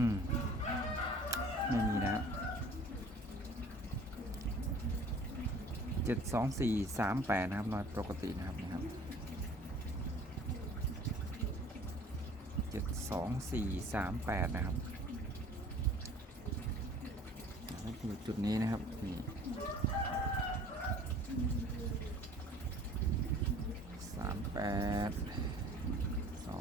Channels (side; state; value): both; normal; correlation 0.50